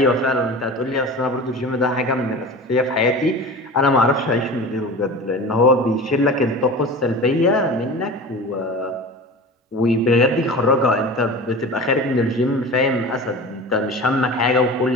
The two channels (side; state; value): both; normal; correlation 0.34